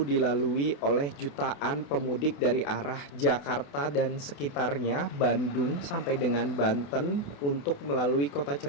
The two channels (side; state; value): right; late; 28 ms